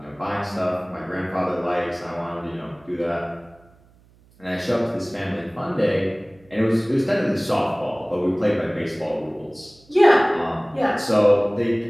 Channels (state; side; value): noise; right; hum, 29 dB below the sound